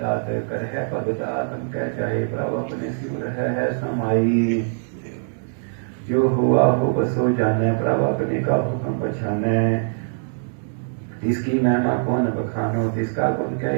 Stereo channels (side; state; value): left; silent; digital silence